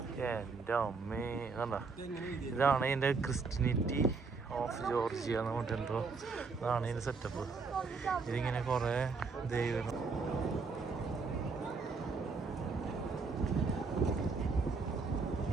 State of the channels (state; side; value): quieter; left; 4.6 dB